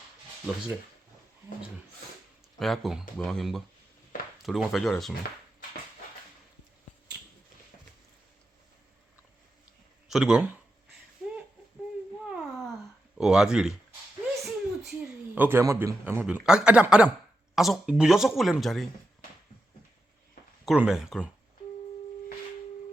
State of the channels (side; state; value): both; normal; correlation 0.87